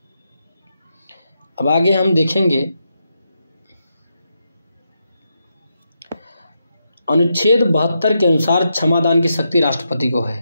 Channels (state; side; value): inverted; both; correlation -0.84